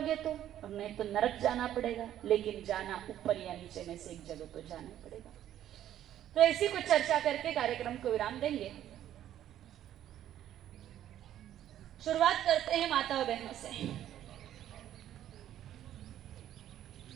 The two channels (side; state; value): left; quieter; 11.6 dB